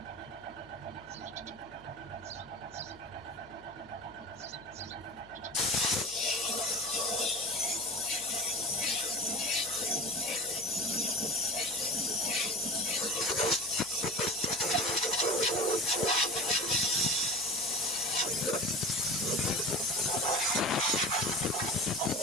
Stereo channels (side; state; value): left; noise; hum, 24 dB below the sound